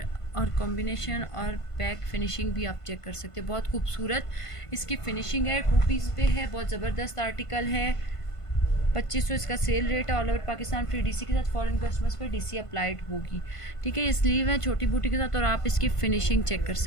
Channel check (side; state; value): right; late; 1.5 ms